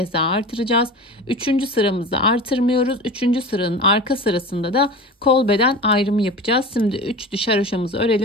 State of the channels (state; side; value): normal; both; correlation 0.33